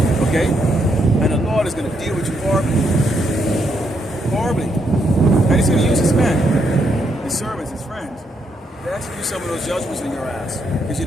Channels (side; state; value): both; normal; correlation 0.77